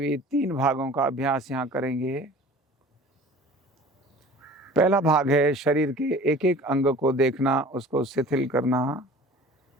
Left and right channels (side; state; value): both; normal; correlation 0.44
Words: 3 भागों का अभ्यास यहाँ करेंगे। पहला भाग है शरीर के एक एक अंग को देखना, उसको शिथिल करना।